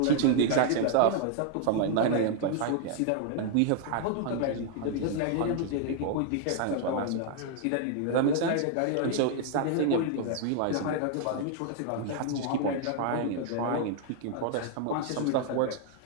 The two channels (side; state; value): both; different; correlation 0.00